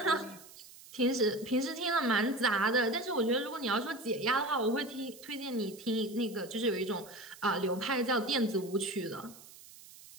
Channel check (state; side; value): noise; right; hiss, 20 dB below the sound